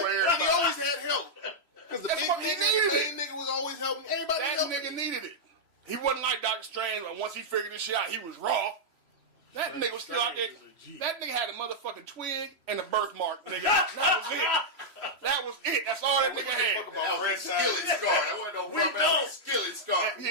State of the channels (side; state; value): left; late; 3.0 ms